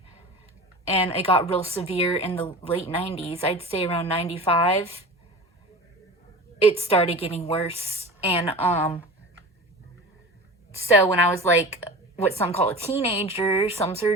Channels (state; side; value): normal; both; correlation 0.34